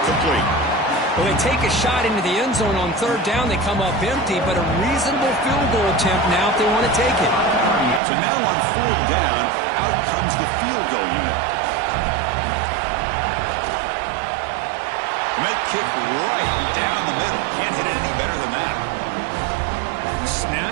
complete. Well, they take a shot into the end zone on 3rd down. They come up empty, but a reasonable field goal attempt now if they want to take it. So now on 4th down, out comes the field goal unit. Met kick right down the middle. Can't hit it any better than that. The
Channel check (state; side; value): drops out; left; at 8.0 s